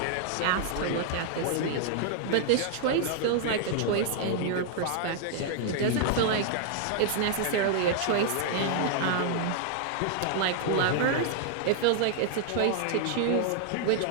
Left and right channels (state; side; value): different; both; correlation 0.00